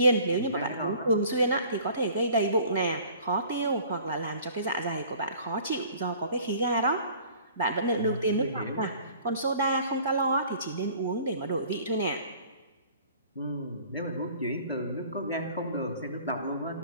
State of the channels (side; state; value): both; inverted; correlation -0.51